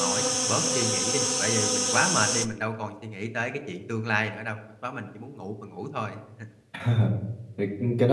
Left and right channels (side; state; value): both; identical; correlation 1.00